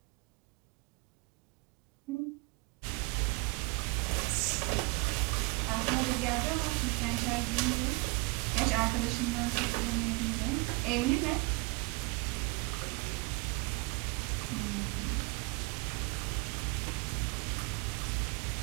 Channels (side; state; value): left; quieter; 28.2 dB